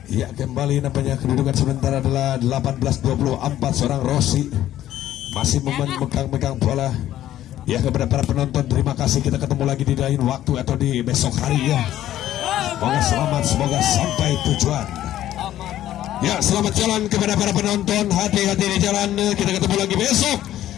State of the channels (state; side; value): quieter; right; 12.8 dB